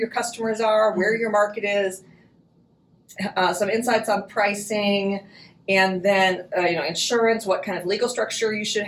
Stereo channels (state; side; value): identical; both; correlation 1.00